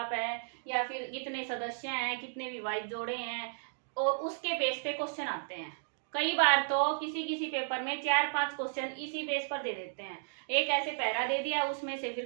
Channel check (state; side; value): silent; left; digital silence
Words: है, या फिर कितने सदस्य हैं, कितने विवाहित जोड़े हैं, और उसके बेस पे क्वेश्चन आते हैं। कई बार तो किसी किसी पेपर में 4-5 क्वेश्चन इसी बेस पर दे देते हैं। एक ऐसे पैरा दे दिया, उसमें से फिर